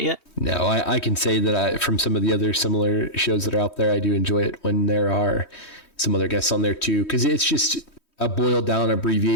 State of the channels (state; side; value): late; right; 3.1 ms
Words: yet. No, I can say that from some of the other similar shows that are out there, I do enjoy it when there are some other guests on there too, because it's just a boiled down,